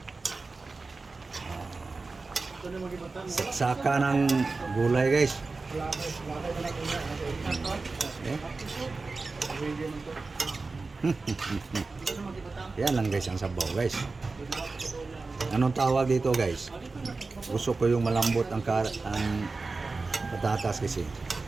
Saksaka ng gulay guys. Okay. Yan lang guys ang sabaw guys. Anong tawag dito guys? Gusto ko yung malambot ang patatas kasi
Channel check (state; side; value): quieter; left; 3.8 dB